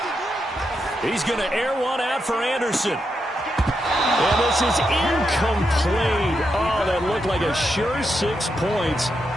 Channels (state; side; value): normal; both; correlation 0.83